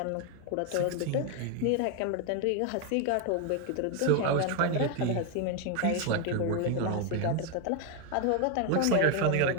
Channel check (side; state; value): both; different; correlation 0.01